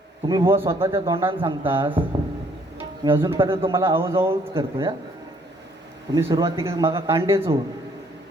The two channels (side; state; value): both; normal; correlation 0.64